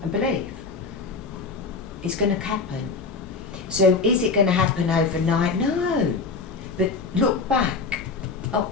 and believe. It's going to happen. So is it going to happen overnight? No. But look back,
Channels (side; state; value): right; quieter; 4.4 dB